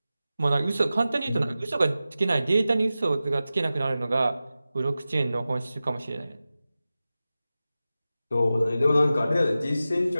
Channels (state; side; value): inverted; both; correlation -0.94